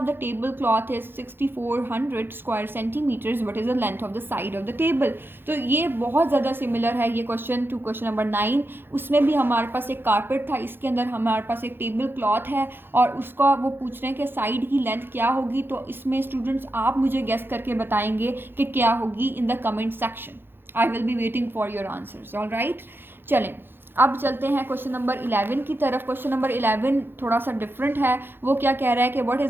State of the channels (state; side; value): late; left; 0.10 ms